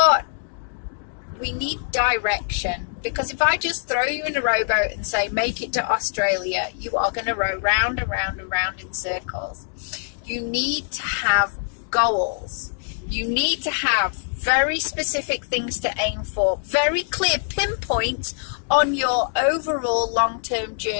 we need direction. Because if I just throw you in a rowboat and say, make it to Australia, you are going to row round and round and round in circles. You need to have goals. You need to have very specific things to aim for, very clear pinpoints on your overall long-term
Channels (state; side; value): silent; right; digital silence